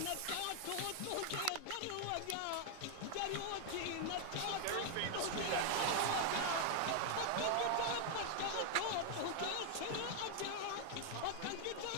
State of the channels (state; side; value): different; both; correlation 0.00